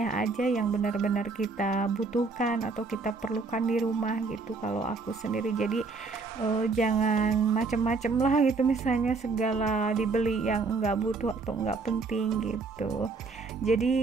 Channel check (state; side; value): quieter; left; 4.1 dB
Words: aja yang benar-benar kita butuhkan atau kita perlukan di rumah gitu kalau aku sendiri. Jadi jangan macem-macem lah gitu, misalnya segala dibeli yang enggak butuh atau enggak penting gitu.